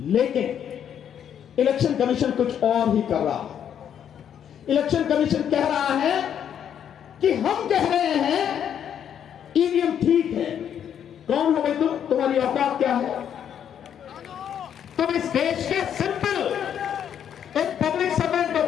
लेकिन इलेक्शन कमीशन कुछ और ही कर रहा है। इलेक्शन कमीशन कह रहा है कि हम कह रहे हैं ईवीएम ठीक है। कौन हो भाई तुम? तुम्हारी औकात क्या है? तुम इस देश के सिंपल एक पब्लिक सर्वेंट हो।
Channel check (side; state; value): right; quieter; 9.0 dB